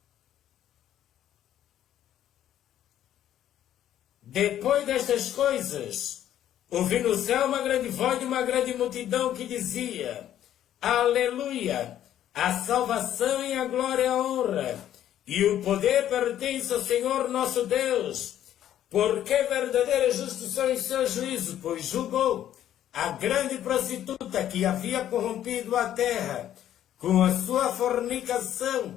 Depois destas coisas, ouvi no céu uma grande voz de uma grande multidão que dizia: Aleluia! A salvação e a glória e a honra e o poder pertence ao Senhor nosso Deus, Porque verdadeira justiça em seu juízo, pois julgou a grande prostituta que havia corrompido a terra com a sua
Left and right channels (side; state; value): right; quieter; 11.4 dB